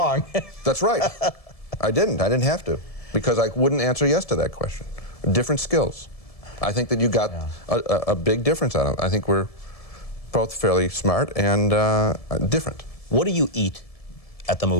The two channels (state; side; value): late; right; 1.7 ms